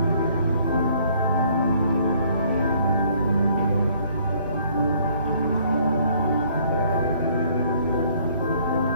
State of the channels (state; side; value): inverted; both; correlation -0.62